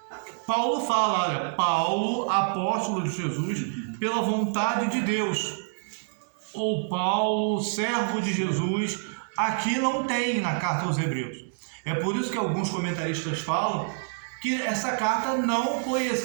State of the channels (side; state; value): left; silent; digital silence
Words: Paulo fala, olha, Paulo, apóstolo de Jesus, pela vontade de Deus, ou Paulo, servo de Jesus. Aqui não tem na carta aos Hebreus. É por isso que alguns comentaristas falam que essa carta não foi